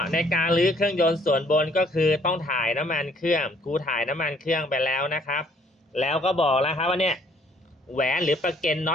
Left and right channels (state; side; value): normal; both; correlation 0.63